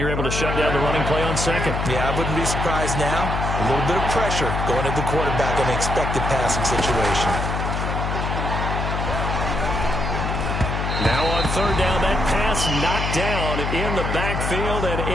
able to shut down the running play on 2nd. Yeah, I wouldn't be surprised now. A little bit of pressure going at the quarterback on the expected passing situation. Now on 3rd down, that pass knocked down in the backfield and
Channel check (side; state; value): left; noise; hum, 2 dB below the sound